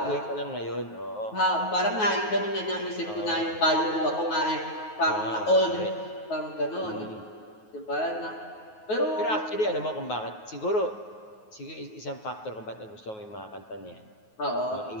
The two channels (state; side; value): late; right; 9.4 ms